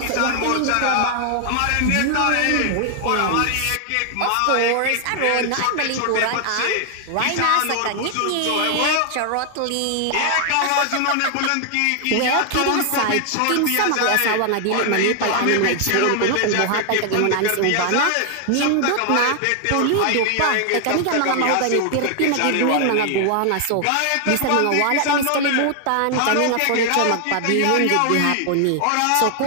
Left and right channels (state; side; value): different; both; correlation 0.00